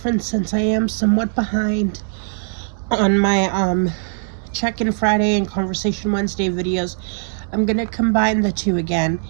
since I am somewhat behind on my Check-in Friday and Conversation Wednesday videos. I'm going to combine the two again.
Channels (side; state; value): left; silent; 65 dB below the other